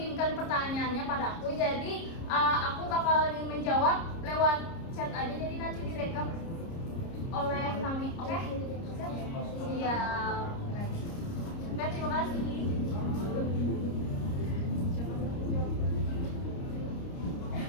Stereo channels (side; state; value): right; late; 30 ms